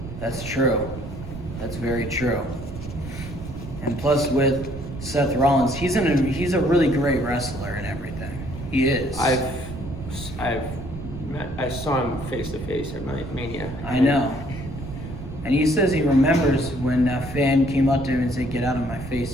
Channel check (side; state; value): right; noise; rumble, 10 dB below the sound